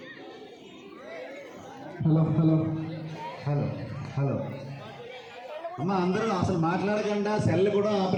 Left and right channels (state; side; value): identical; both; correlation 1.00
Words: హలో హలో హలో హలో అమ్మ, అందరూ అసలు మాట్లాడకుండా సెల్ కూడా